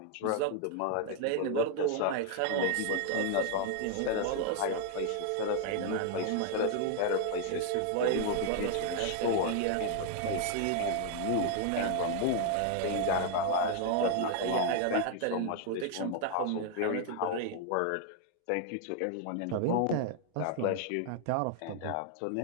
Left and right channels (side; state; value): both; different; correlation 0.00